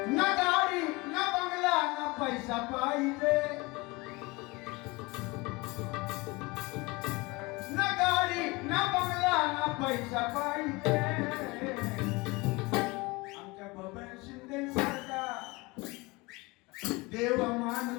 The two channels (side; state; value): right; quieter; 24.3 dB